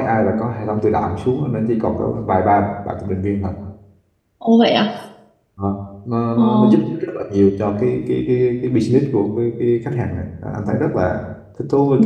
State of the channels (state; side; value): identical; both; correlation 1.00